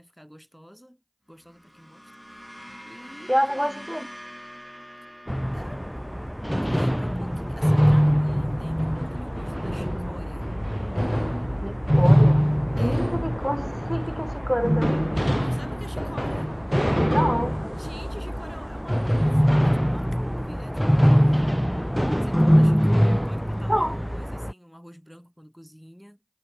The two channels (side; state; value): both; identical; correlation 1.00